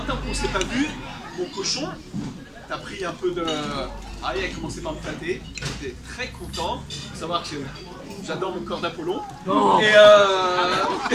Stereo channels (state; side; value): identical; both; correlation 1.00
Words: qu'on ne s'est pas vu, mon cochon, t'as pris un peu de... » Ah, il a commencé par me flatter, j'étais très content. Il faut savoir que j'adore mon corps d'Apollon. Oh. Et